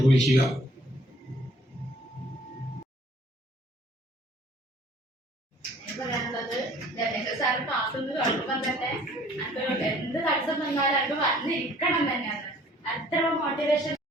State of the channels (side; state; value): both; normal; correlation 0.56